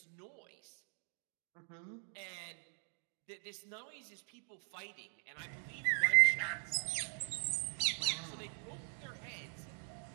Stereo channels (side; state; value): left; silent; 51 dB below the other